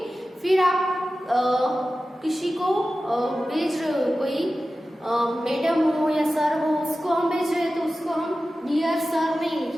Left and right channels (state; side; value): normal; both; correlation 0.95